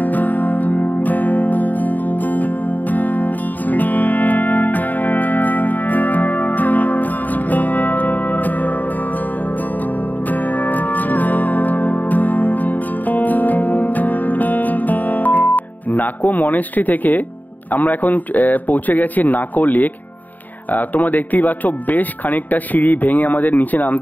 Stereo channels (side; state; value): right; late; 0.084 ms